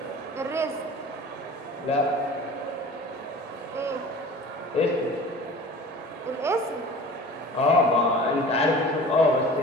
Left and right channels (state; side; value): normal; both; correlation 0.41